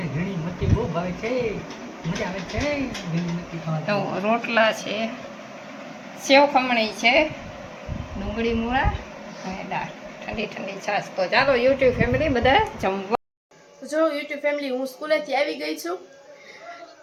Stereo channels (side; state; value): both; identical; correlation 1.00